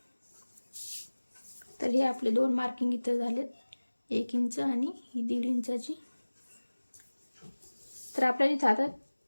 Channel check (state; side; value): inverted; both; correlation -1.00